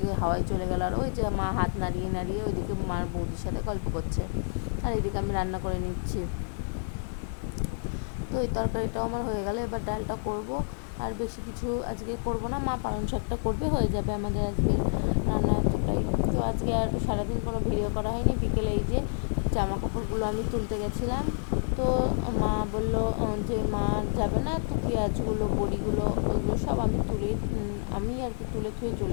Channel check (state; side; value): silent; right; digital silence